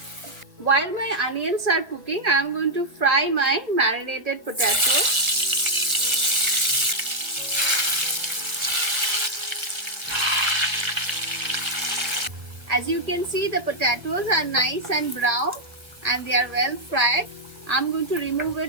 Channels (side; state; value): left; late; 1.7 ms